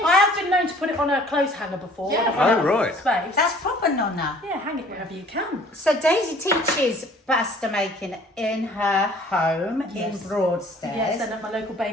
I have been known to put it on a clothes hanger before. Yeah. When I Oh, right. Space. that's proper nonna. Yeah, hang it wherever you can. So Daisy teaches pasta making in her home in Broadstairs. Yes, and at my local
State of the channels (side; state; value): both; normal; correlation 0.53